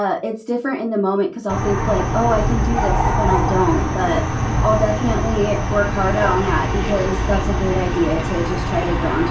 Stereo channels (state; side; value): identical; both; correlation 1.00